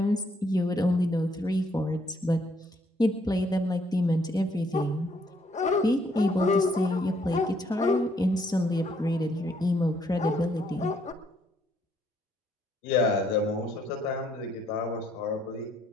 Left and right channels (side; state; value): both; normal; correlation 0.69